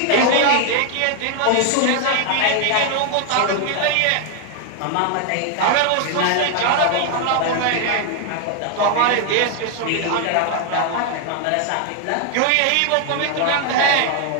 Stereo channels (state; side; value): different; both; correlation 0.00